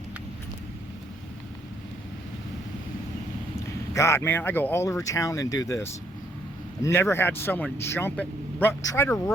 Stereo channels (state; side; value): normal; both; correlation 0.70